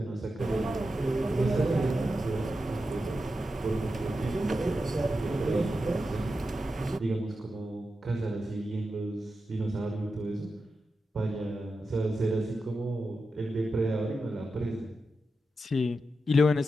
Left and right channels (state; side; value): normal; both; correlation 0.89